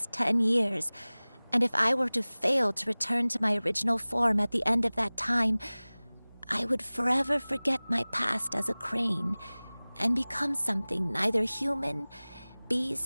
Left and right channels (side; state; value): both; inverted; correlation -1.00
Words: 10 years, and if I were to fail to return to my original form at the end of that time, I would forever forget my past as a crane and become something neither human,